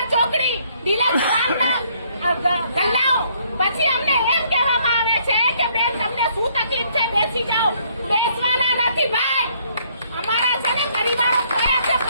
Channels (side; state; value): both; inverted; correlation -0.67